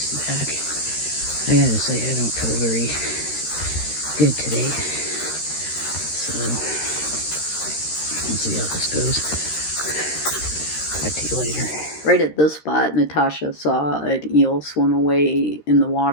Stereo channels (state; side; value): late; right; 13 ms